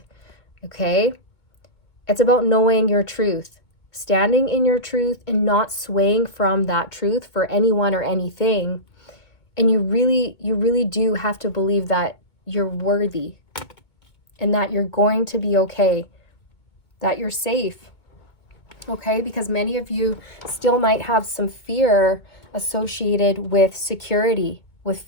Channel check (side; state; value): right; late; 2.2 ms